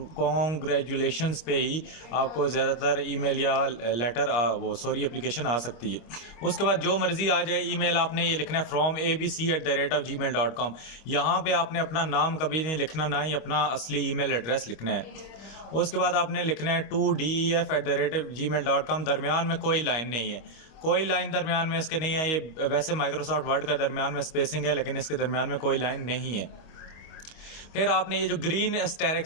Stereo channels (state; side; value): late; right; 25 ms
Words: पे ही आपको ज़्यादातर ईमेल या लेटर एप्लीकेशन आ सकती है। उसके बाद जो मर्ज़ी आ जाए ईमेल, आपने ये लिखना है फ्रॉम abc@gmail.com। यहाँ पे आपने अपना नाम कभी नहीं लिखना, ना ही अपना असली ईमेल एड्रेस लिखना है। उसके बाद आपने लिखना है TODEF@gmail.com। दरमियान में कोई लाइन नहीं है, कोई लाइन दरमियान में इसके नहीं है। ये वैसे माइक्रोसॉफ्ट वर्ड का दरमियान में स्पेसिंग है, लेकिन इसके दरमियान में कोई लाइन नहीं है। फिर आपने ये जो ग्रीन